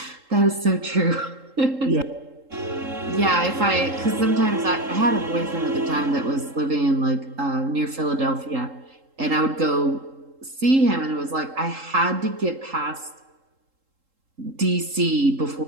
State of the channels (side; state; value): left; late; 3.7 ms